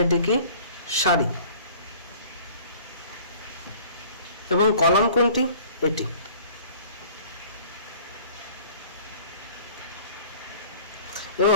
এটি কি? সারি। এবং কলাম কোনটি? এটি।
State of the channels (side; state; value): both; inverted; correlation -0.49